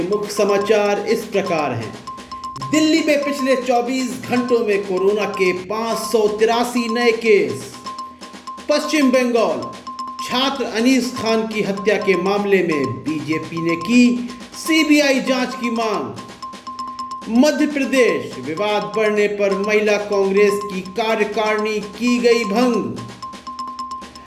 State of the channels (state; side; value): identical; both; correlation 1.00